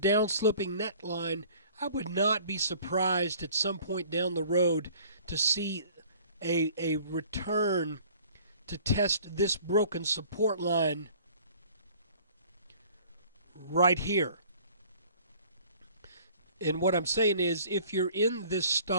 neckline, I would not be surprised at some point down the road to see a return to test this broken support line right here." And what I'm saying is, if you're in this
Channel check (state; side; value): inverted; both; correlation -0.51